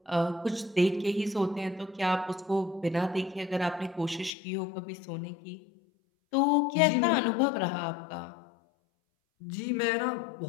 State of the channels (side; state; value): right; drops out; at 4.3 s